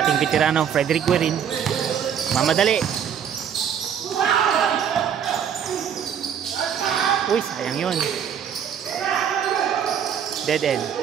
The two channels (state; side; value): quieter; left; 8.4 dB